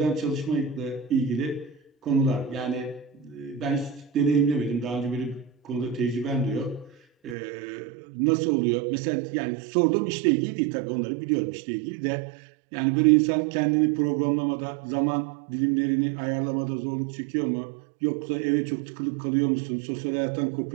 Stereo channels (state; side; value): drops out; left; at 7.4 s